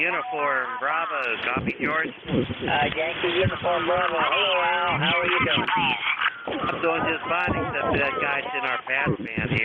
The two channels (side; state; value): both; identical; correlation 1.00